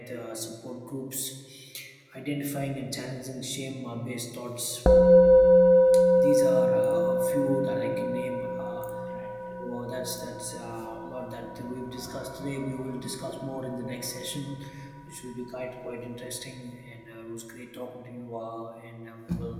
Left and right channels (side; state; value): both; identical; correlation 1.00